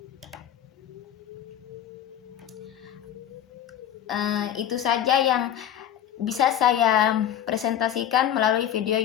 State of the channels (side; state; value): right; quieter; 10.5 dB